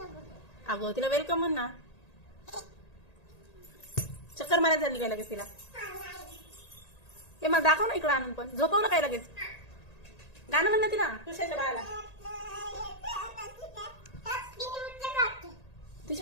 अगं तिला वेलकम म्हण ना. चक्कर मारायला झाली काय लगेच तिला? हे मला दाखव ना इकडं आणून. पण झोपव ना काय लगेच. गाणं म्हण ना तिला तुझ्याच्या बाळाला. ती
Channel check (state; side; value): late; right; 1.8 ms